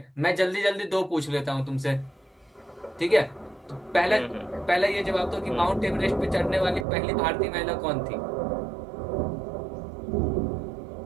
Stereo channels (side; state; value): left; drops out; at 6.9 s